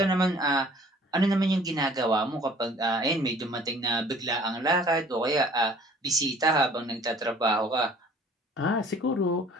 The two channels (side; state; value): both; normal; correlation 0.52